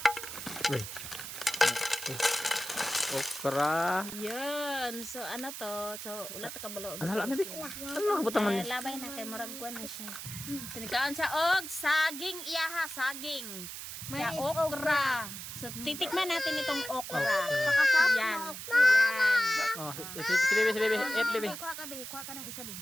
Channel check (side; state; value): right; noise; hiss, 9 dB below the sound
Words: Wait. Okra. Yan. So ano to? So ulat ka balo. Ano hala na bi? Ano kabutang man ni? Labay na kay murag kuan na siya. Tinikaon siya og saging iyaha, saging. Ya okra. So titikman natin itong okra. Yan. Oh, si baby. Eat baby. Kuha ka ng isa bi.